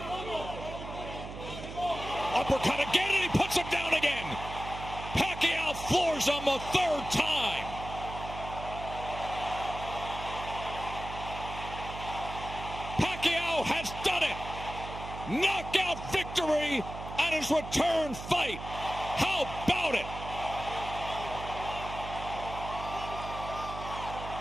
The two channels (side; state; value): right; noise; hum, 10 dB below the sound